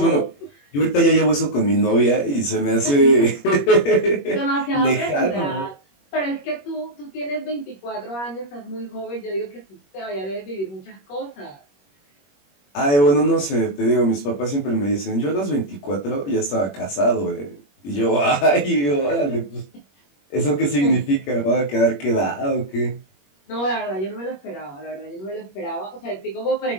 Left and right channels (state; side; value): late; right; 21 ms